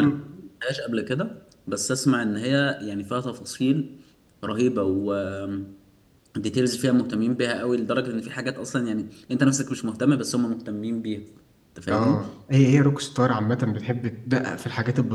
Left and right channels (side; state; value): both; identical; correlation 1.00